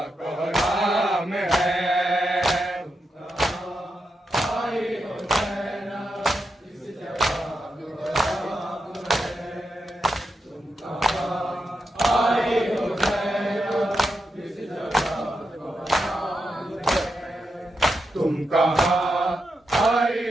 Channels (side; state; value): both; normal; correlation 0.86